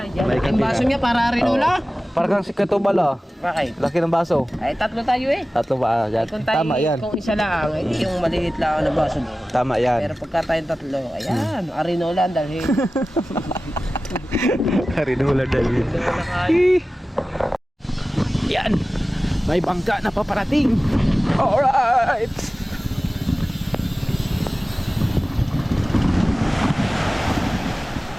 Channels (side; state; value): both; normal; correlation 0.96